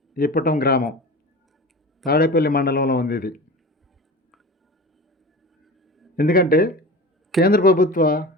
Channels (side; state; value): both; normal; correlation 0.33